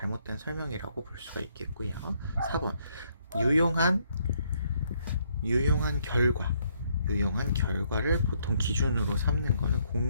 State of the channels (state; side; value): inverted; both; correlation -0.71